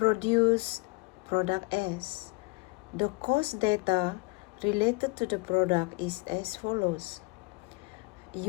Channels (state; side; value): quieter; right; 28.4 dB